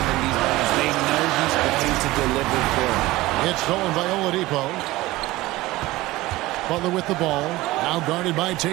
in these moments. They know he's going to deliver for them. It's stolen by Oladipo. Butler with the ball. Now guarded by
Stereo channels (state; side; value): quieter; left; 18.6 dB